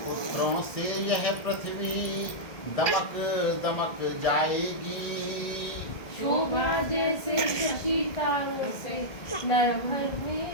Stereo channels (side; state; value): right; late; 1.6 ms